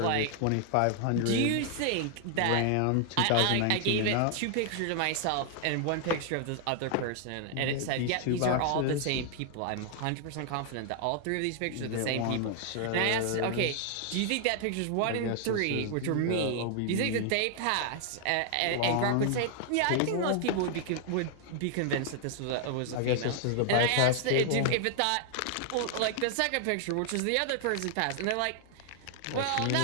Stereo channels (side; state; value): both; different; correlation 0.00